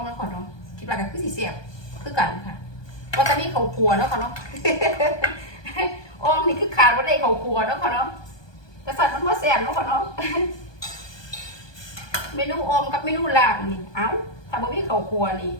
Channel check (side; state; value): right; late; 1.2 ms